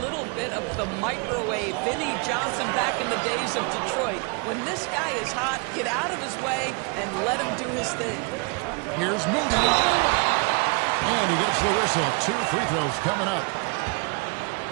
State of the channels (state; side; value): quieter; left; 33.1 dB